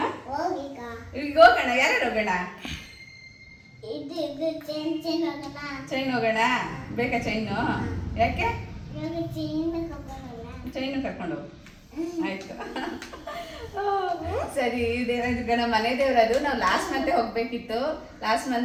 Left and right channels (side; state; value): both; identical; correlation 1.00